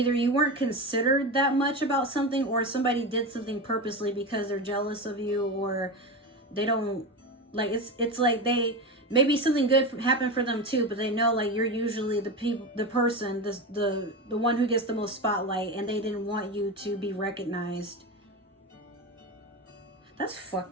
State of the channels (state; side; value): normal; both; correlation 0.21